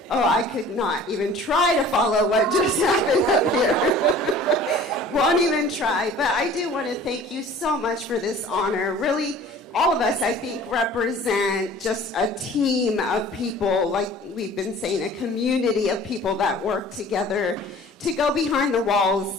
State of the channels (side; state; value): both; normal; correlation 0.47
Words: Oh, I could not even try to follow what just happened up here. Won't even try. But I do want to thank you so much for this honor. Really, all of us, I think, represent just a team of people, like we've been saying, a community of people that work together to go behind the